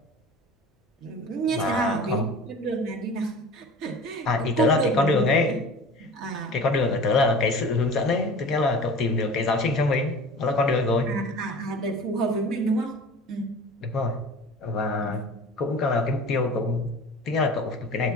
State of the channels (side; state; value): both; normal; correlation 0.40